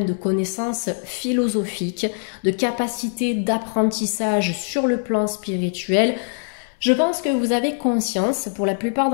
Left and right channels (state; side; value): silent; right; 64 dB below the other